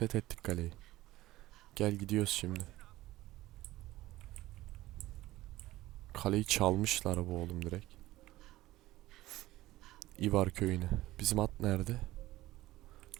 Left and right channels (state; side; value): quieter; left; 16.8 dB